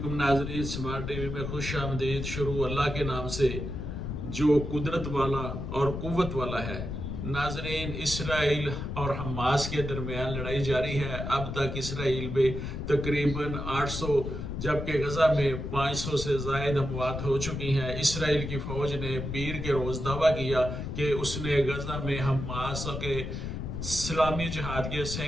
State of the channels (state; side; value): noise; left; rumble, 5 dB below the sound